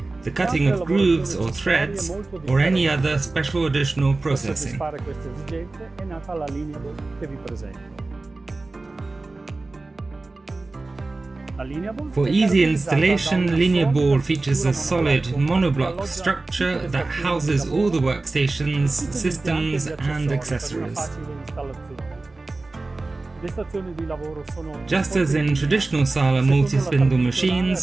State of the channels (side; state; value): left; quieter; 3.3 dB